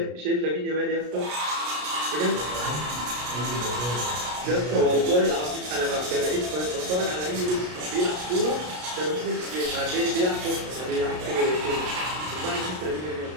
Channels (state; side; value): late; left; 33 ms